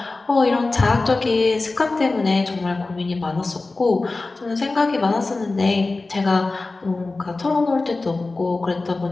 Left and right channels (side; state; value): right; quieter; 3.4 dB